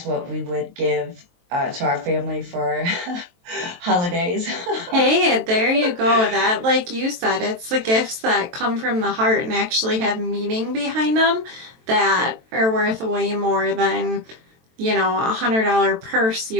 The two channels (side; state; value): left; late; 23 ms